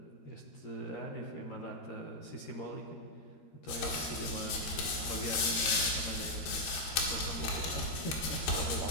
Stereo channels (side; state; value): right; late; 13 ms